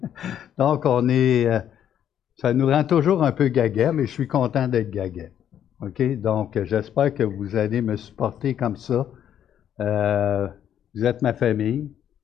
Donc, on est. Ça nous rend toujours un peu gaga, mais je suis content d'être gaga. OK? Donc, j'espère que vous allez me supporter comme ça. Vous êtes ma famille.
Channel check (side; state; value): right; quieter; 9.9 dB